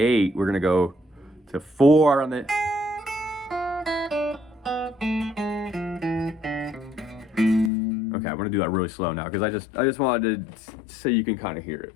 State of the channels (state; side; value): drops out; right; at 7.7 s